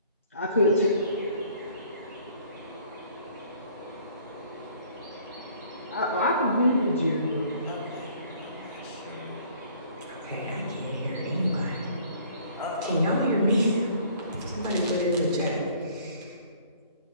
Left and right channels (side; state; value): both; inverted; correlation -0.57